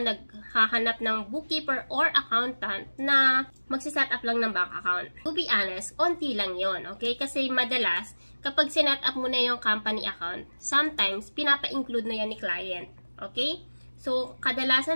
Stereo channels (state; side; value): inverted; both; correlation -1.00